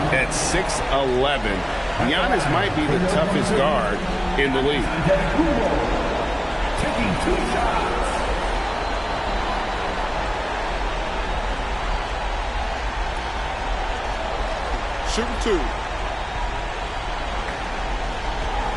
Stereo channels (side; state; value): both; identical; correlation 1.00